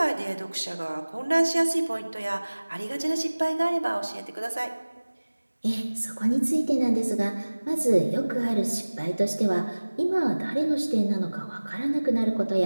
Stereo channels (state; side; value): inverted; both; correlation -1.00